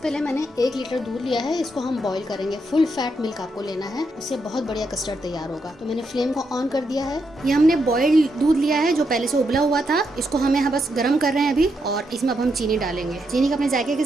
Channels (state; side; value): normal; both; correlation 0.81